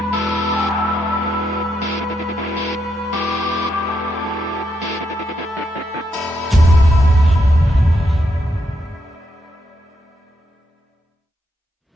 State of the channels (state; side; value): normal; both; correlation 0.80